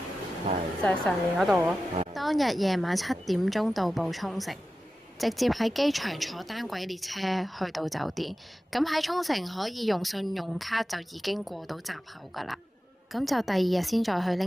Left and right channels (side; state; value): both; normal; correlation 0.94